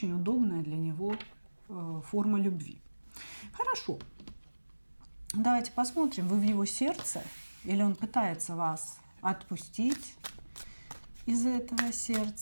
удобная для него форма любви. Хорошо. Давайте посмотрим, вы в его сердце или он пытается вас отпустить из этого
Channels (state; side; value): inverted; both; correlation -1.00